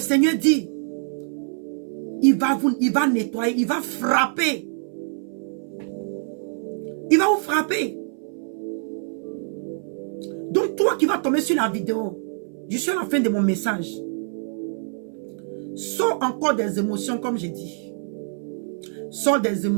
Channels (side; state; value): left; silent; 58 dB below the other